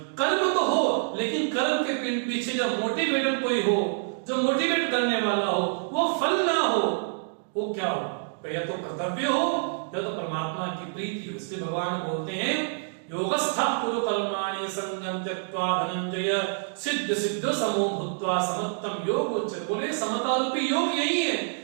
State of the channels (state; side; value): silent; left; digital silence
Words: कर्म तो हो, लेकिन कर्म के पीछे जो मोटिवेटर कोई हो, जो मोटिवेट करने वाला हो, वो फल ना हो, वो क्या हो? या तो कर्तव्य हो या तो परमात्मा की प्रीति हो। इसलिए भगवान बोलते हैं योगस्था कुरु कर्माणि संगम त्यक्त्वा धनंजय सिद्ध सिद्ध समो भूत्वा समत्तम योग उच्चते। बोले समता रूपी योग यही है